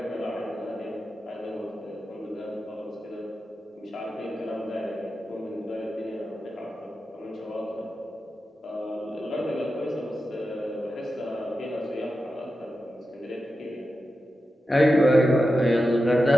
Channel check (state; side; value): normal; both; correlation 0.91